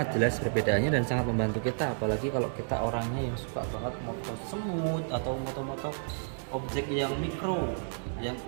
jelas perbedaannya dan sangat membantu kita, apalagi kalau kita orangnya yang suka banget moto semut atau moto-moto objek yang mikro, yang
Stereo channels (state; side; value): silent; left; digital silence